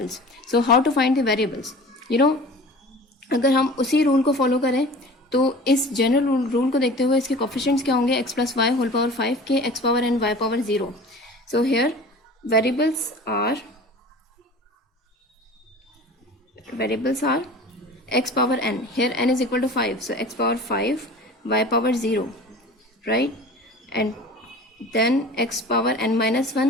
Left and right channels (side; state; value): both; normal; correlation 0.40